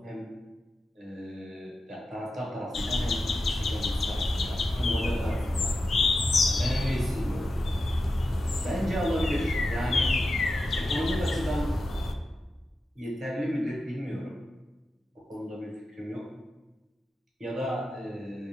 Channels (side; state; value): both; normal; correlation 0.91